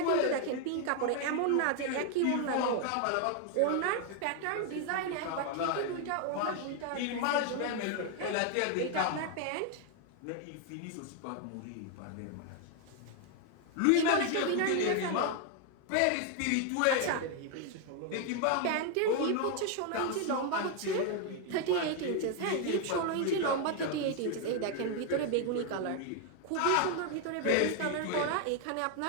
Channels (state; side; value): different; both; correlation 0.01